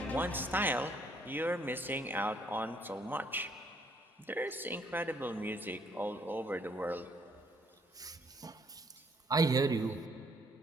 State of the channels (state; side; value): normal; both; correlation 0.67